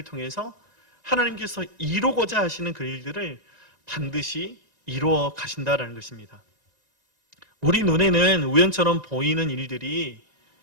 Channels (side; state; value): left; late; 1.9 ms